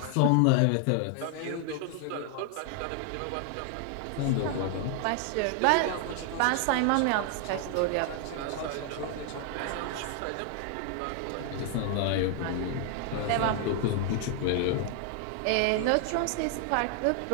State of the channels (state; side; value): different; both; correlation 0.00